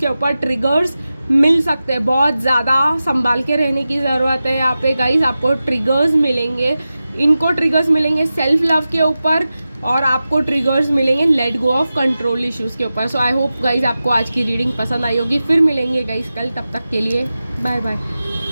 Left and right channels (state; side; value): inverted; both; correlation -0.94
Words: ऊपर ट्रिगर्स मिल सकते हैं, बहुत ज़्यादा संभाल के रहने की ज़रूरत है। यहाँ पे गाइस आपको ट्रिगर्स मिलेंगे, इनको ट्रिगर्स मिलेंगे सेल्फ लव के ऊपर, और आपको ट्रिगर्स मिलेंगे late go of control issues के ऊपर। सो आई होप गाइस आपको आज की रीडिंग पसंद आई होगी। फिर मिलेंगे गाइस कल, तब तक के लिए बाय बाय।